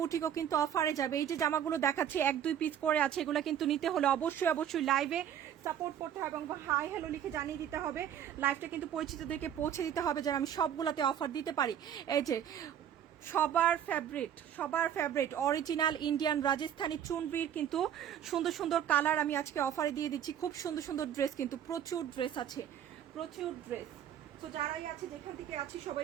কিন্তু অফারে যাবে। এই যে জামাগুলো দেখাচ্ছি, 1-2 পিস করে আছে, এগুলো কিন্তু নিতে হলে অবশ্যই অবশ্যই লাইভে সাপোর্ট করতে হবে এবং হাই হ্যালো লিখে জানিয়ে দিতে হবে। লাইভটা কিন্তু পরিচিতদেরকে পৌঁছে দিতে হবে যেন আমি সবগুলোতে অফার দিতে পারি। এই যে সবার ফেভারিট অরিজিনাল ইন্ডিয়ান রাজস্থানী চুনরির কিন্তু সুন্দর সুন্দর কালার আমি আজকে অফারে দিয়ে দিচ্ছি। খুব সুন্দর সুন্দর ড্রেস, কিন্তু প্রচুর ড্রেস আছে, প্রচুর ড্রেস। তো যারাই আছে, যেখান থেকে আছি, সবাই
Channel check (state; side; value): quieter; left; 9.7 dB